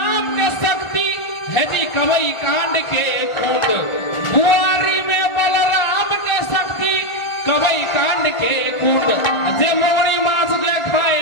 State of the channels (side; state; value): right; late; 1.4 ms